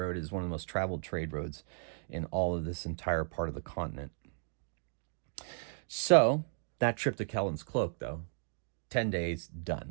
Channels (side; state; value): left; silent; digital silence